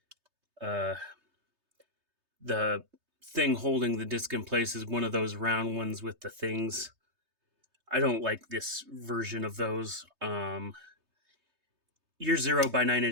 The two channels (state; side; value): late; left; 3.2 ms